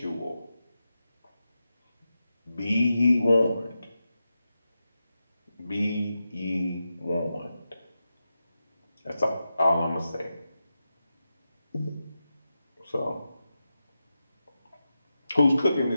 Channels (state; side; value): inverted; both; correlation -0.91